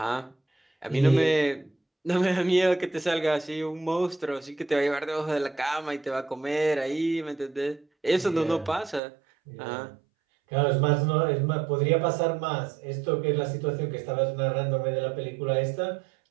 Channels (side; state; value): left; drops out; at 9.0 s